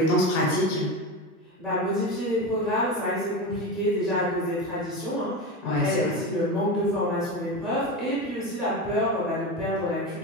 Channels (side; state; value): both; normal; correlation 0.22